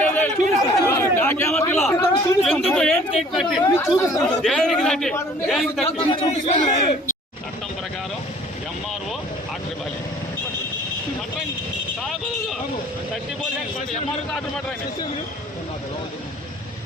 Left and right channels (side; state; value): both; normal; correlation 0.53